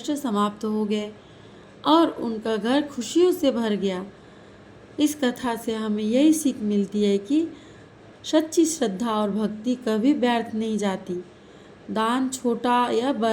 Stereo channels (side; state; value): both; identical; correlation 1.00